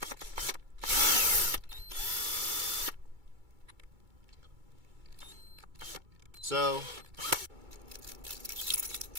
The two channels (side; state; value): left; late; 2.3 ms